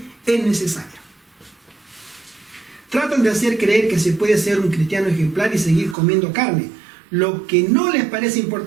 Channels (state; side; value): drops out; left; at 6.0 s